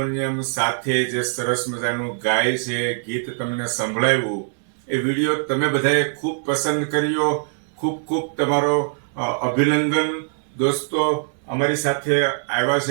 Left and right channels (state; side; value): silent; left; 64 dB below the other